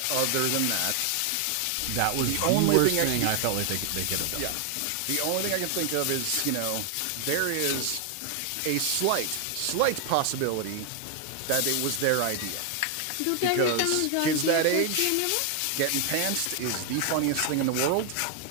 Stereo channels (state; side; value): different; both; correlation 0.00